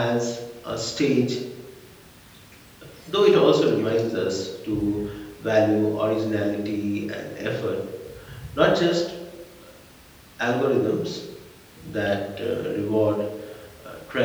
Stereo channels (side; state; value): both; identical; correlation 1.00